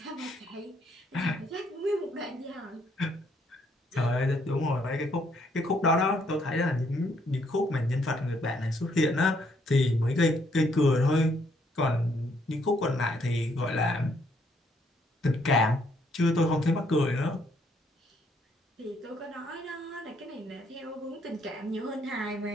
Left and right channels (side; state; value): both; normal; correlation 0.70